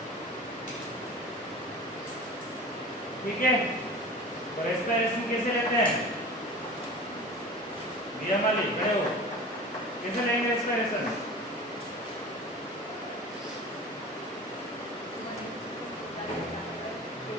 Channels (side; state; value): both; normal; correlation 0.36